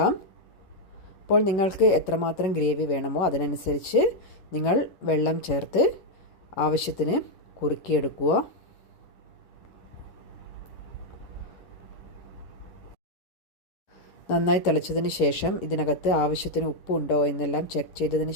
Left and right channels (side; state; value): right; late; 11 ms